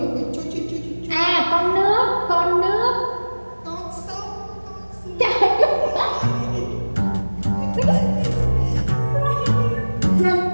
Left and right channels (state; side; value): inverted; both; correlation -1.00